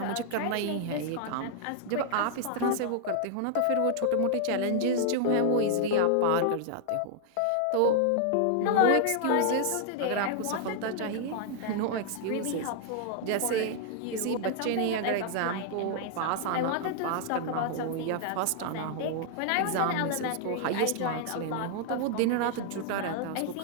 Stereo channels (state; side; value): different; both; correlation -0.01